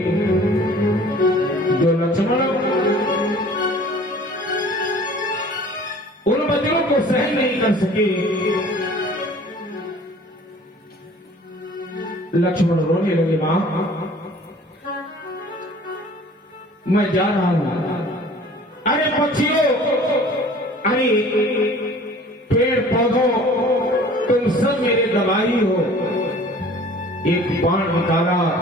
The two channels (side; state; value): both; normal; correlation 0.48